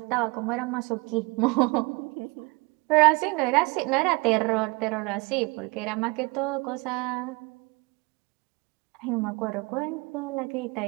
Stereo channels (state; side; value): quieter; left; 27.4 dB